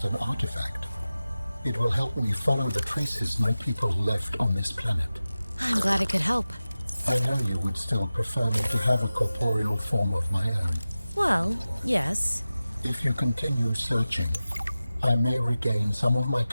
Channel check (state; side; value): inverted; both; correlation -0.95